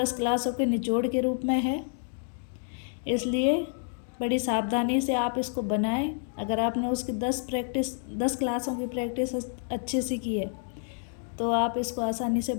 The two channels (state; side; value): silent; right; 59 dB below the other